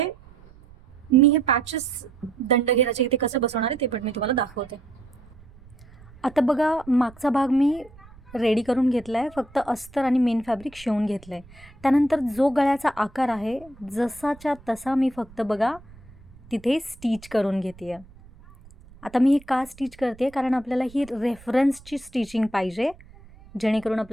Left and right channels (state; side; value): noise; right; rumble, 23 dB below the sound